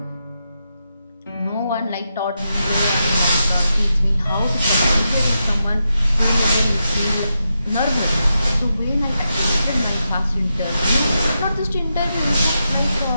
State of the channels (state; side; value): inverted; both; correlation -0.86